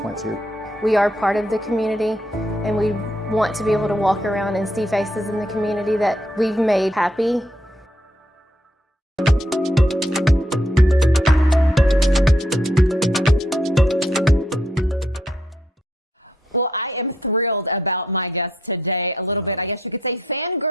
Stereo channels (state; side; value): normal; both; correlation 0.75